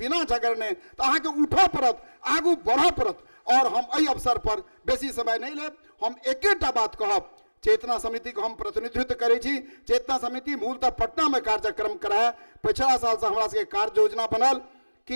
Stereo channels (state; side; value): inverted; both; correlation -1.00